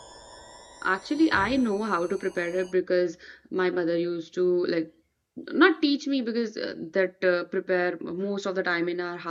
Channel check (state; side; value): identical; both; correlation 1.00